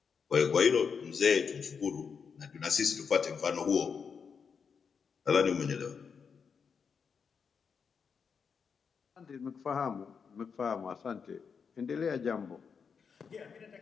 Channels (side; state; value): right; quieter; 6.1 dB